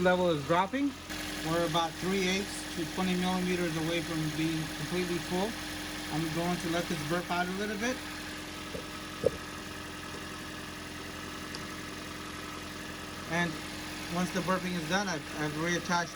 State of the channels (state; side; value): identical; both; correlation 1.00